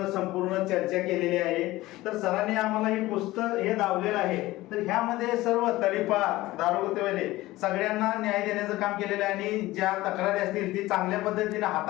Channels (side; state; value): right; quieter; 18.0 dB